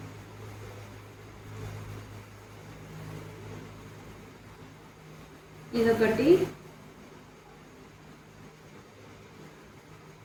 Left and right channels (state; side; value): identical; both; correlation 1.00